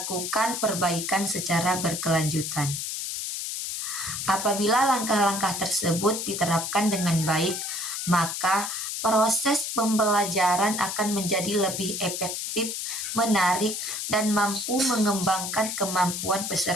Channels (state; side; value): noise; left; hiss, 4 dB below the sound